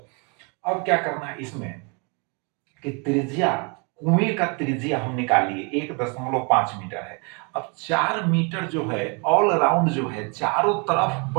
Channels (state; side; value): quieter; left; 33.7 dB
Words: अब क्या करना है इसमें कि त्रिज्या, कुएं का त्रिज्या हम निकालिए 1.5 मीटर है। अब 4 मीटर जो है ऑल अराउंड जो है चारों तरफ